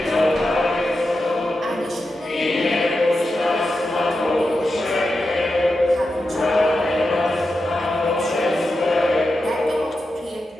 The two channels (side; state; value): both; normal; correlation 0.89